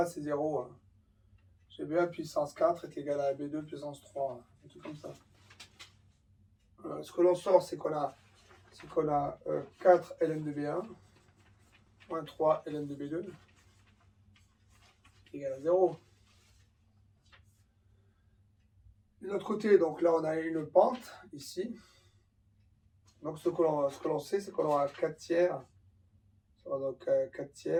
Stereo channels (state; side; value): identical; both; correlation 1.00